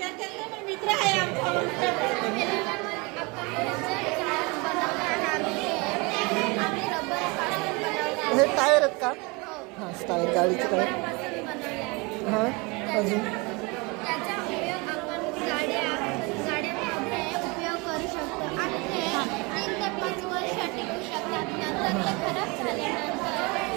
हे टायर आहेत का? हां टायर गाडीचे टायर. हां अजून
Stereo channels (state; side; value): quieter; left; 27.5 dB